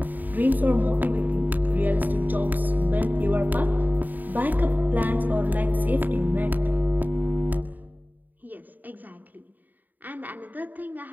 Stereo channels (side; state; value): left; late; 0.086 ms